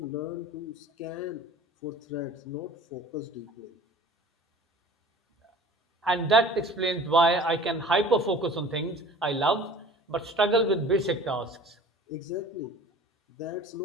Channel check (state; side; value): normal; both; correlation 0.44